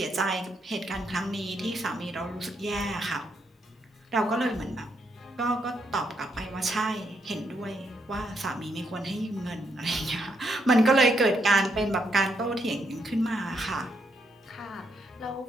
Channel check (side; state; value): both; normal; correlation 0.77